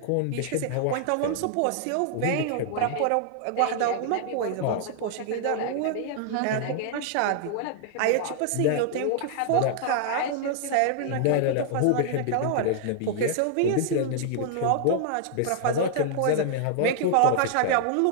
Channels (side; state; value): both; different; correlation -0.01